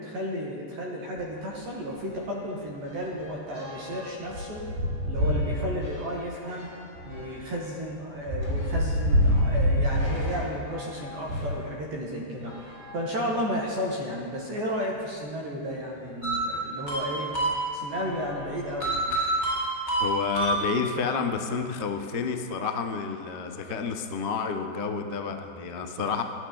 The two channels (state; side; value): late; left; 14 ms